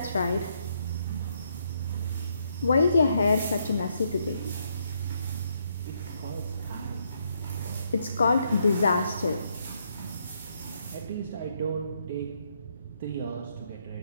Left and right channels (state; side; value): inverted; both; correlation -0.75